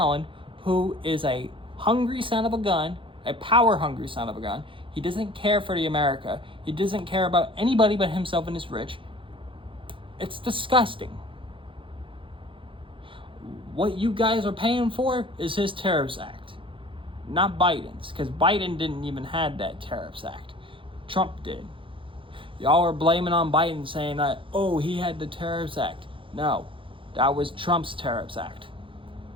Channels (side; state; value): left; late; 0.25 ms